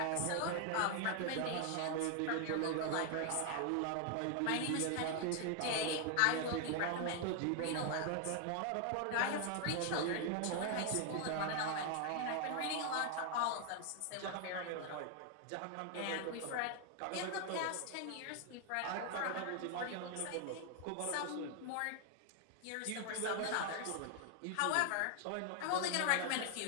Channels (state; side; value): different; both; correlation 0.00